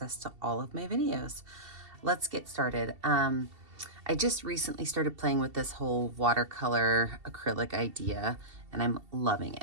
to all of my videos. Let's get started. I just recently started playing with this whole watercolor acrylic idea, and I'm loving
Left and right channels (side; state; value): left; late; 2.7 ms